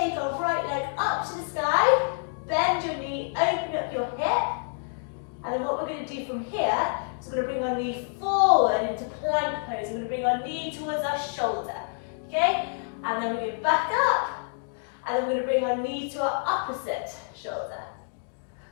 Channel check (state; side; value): silent; right; digital silence